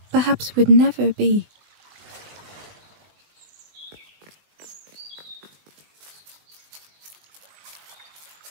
perhaps would never be.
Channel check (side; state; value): left; late; 20 ms